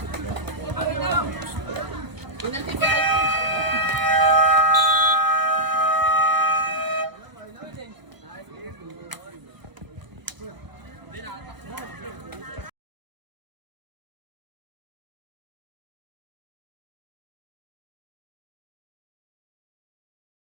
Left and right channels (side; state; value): left; late; 1.0 ms